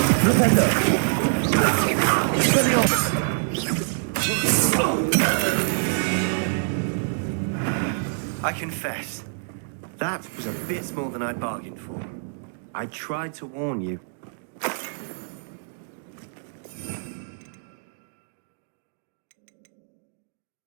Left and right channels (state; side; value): silent; left; digital silence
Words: I confess, that was a bit more than I'd bargained for. I tried to warn you.